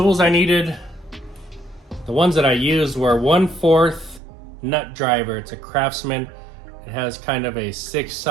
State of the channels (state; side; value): drops out; left; at 4.2 s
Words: I needed, the ones that I used were 1/4 nut driver. It's a Craftsman. It has kind of a